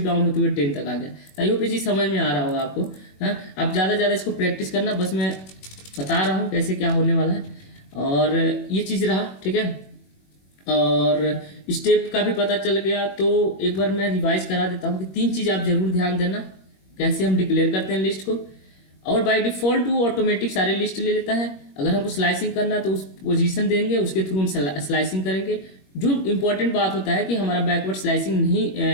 डाउन होते हुए 10 तक आ गया। आई होप ये चीज़ समझ में आ रहा होगा आपको। हाँ, अब ज़्यादा इसको प्रैक्टिस करना, बस मैं बता रहा हूँ कैसे क्या होने वाला है। और ये चीज़ रहा। ठीक है, और स्टेप का भी पता चल गया। तो एक बार मैं रिवाइज करा देता हूँ कि 3 चीज़ आप जरूर ध्यान देना, कैसे हम डिक्लेयर करते हैं लिस्ट को। और बाय डिफॉल्ट वो ऑटोमेटिक सारे लिस्ट ले लेता है। अगर हमको स्लाइसिंग करना है तो उस पोजीशन देंगे, उसके थ्रू हम स्लाइसिंग करेंगे। जो इंपॉर्टेंट बात होता है कि हमारा बैकवर्ड स्लाइसिंग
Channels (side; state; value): right; late; 21 ms